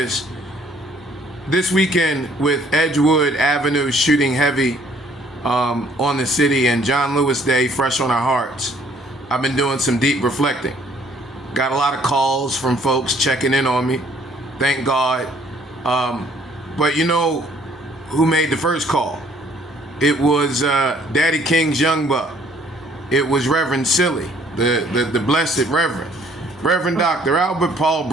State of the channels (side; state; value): both; normal; correlation 0.61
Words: This weekend with Edgewood Avenue shooting heavy on the city and John Lewis Day fresh on our hearts, I've been doing some deep reflecting. Got a lot of calls from folks checking in on me. Thank God. But you know who made the first call? It was Daddy King's young buck. It was Reverend Silly, the blessed Reverend Dr. Albert Paul